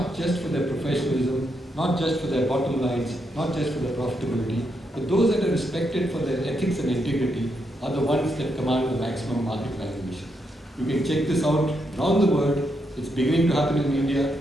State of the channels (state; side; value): normal; both; correlation 0.80